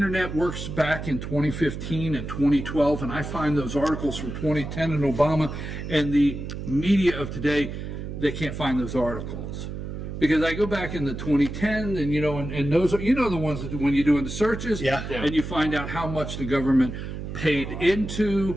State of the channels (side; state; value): right; noise; hum, 7 dB below the sound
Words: works back in 2015 and 2012, and I find those articles from 2010 and Obama and the media of today, they can't find those articles. Because I go back in the 2010 and those are, the ones that when you're doing the searches, and you find out how much the government paid